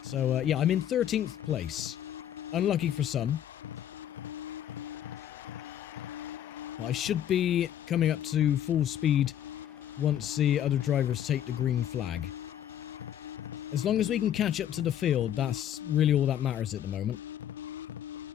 So, yeah, I'm in 13th place. Unlucky for some. But I should be coming up to full speed once the other drivers take the green flag. As long as we can catch up to the field, that's really all that matters at the moment.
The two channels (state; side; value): quieter; right; 10.6 dB